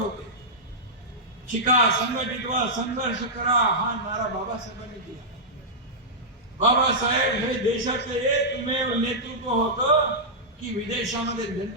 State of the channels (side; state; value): both; normal; correlation -0.11